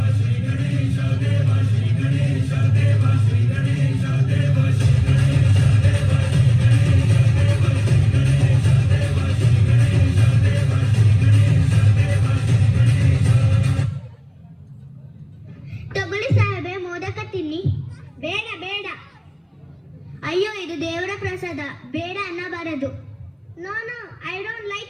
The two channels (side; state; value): both; identical; correlation 1.00